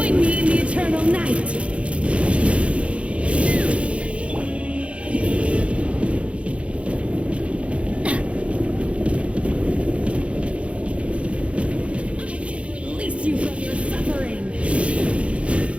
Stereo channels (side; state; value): left; late; 0.061 ms